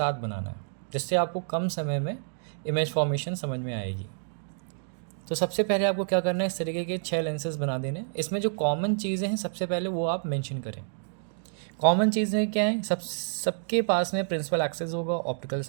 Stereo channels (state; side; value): silent; left; digital silence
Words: बनाना है, जिससे आपको कम समय में इमेज फॉर्मेशन समझ में आएगी। तो सबसे पहले आपको क्या करना है, इस तरीके के 6 लेंसेज बना देने। इसमें जो कॉमन चीज़ें हैं सबसे पहले वो आप मेंशन करें। कॉमन चीज़ें क्या हैं? सबके पास में प्रिंसिपल एक्सेस होगा, ऑप्टिकल